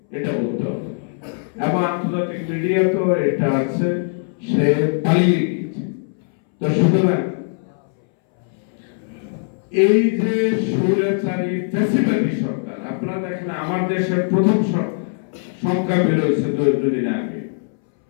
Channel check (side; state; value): right; silent; 64 dB below the other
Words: এটা বলতে হবে। এবং আন্তর্জাতিক মিডিয়া তো এটা আছে, সে পালিয়ে গেছে। তো সুতরাং এই যে স্বৈরাচারী ফ্যাসিবাদী সরকার, আপনারা দেখেন আমার দেশের প্রথম সংখ্যা বেরোয়েছে 2 দিন আগে,